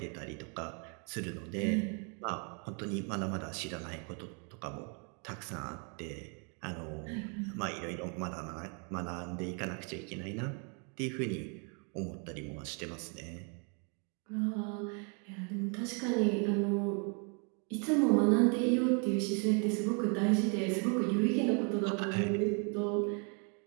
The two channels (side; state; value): left; quieter; 37.6 dB